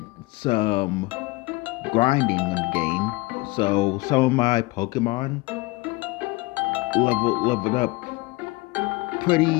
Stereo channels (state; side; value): quieter; right; 22.8 dB